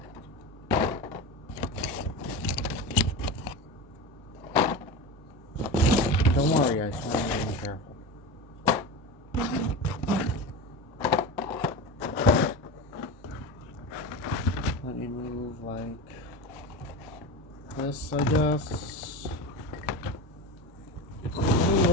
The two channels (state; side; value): normal; both; correlation 0.25